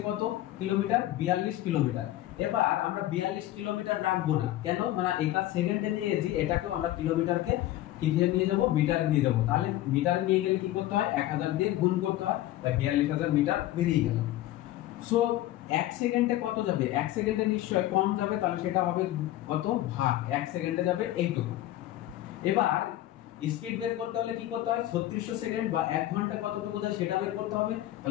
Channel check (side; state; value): right; quieter; 14.7 dB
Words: কত কিলোমিটার? 42 কিলোমিটার। এবার আমরা 42 কিলোমিটার রাখবো না, কেন? মানে এটা সেকেন্ডে নিয়েছি, এটাকেও আমরা কিলোমিটারকে কিসে নিয়ে যাব? মিটারে নিয়ে যাব। তাহলে মিটারে নিয়ে গেলে কি করতে হয়? 1000 দিয়ে গুণ করতে হয়, তাই 42000 মিটার বেরিয়ে গেল। সো 1 সেকেন্ডে কত যাবে? 1 সেকেন্ডে নিশ্চয় কম যাবে, তাহলে সেটা হবে কত? ভাগ 1 সেকেন্ডে যাবে এইটুকু। এবার স্পিড বের করতে হলে কি করতে হয়? 3600 সেকেন্ড বা 1 ঘন্টা কতটুকু যায় সেটা বের করতে হবে।